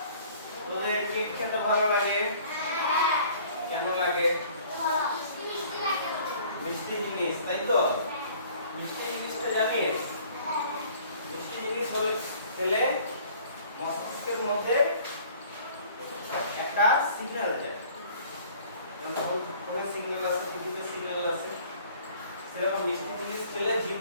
তোদের কেক খেতে ভালো লাগে? কেন লাগে? মিষ্টি জিনিস, তাই তো? মিষ্টি জিনিসটা জানিস? মিষ্টি জিনিস হলে খেলে মস্তিষ্কের মধ্যে একটা সিগন্যাল যায়, সিগন্যাল আছে, টিভিতে সিগন্যাল আছে, সেরকম মিষ্টি জিনিস খেলে জিভ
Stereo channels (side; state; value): both; inverted; correlation -0.53